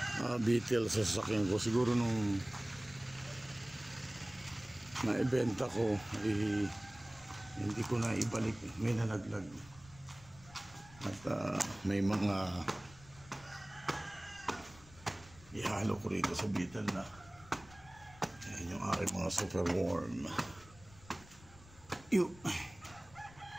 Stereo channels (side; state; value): left; noise; rumble, 22 dB below the sound